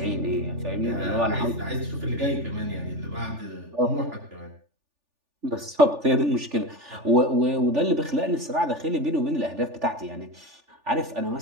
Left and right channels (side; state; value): left; late; 3.4 ms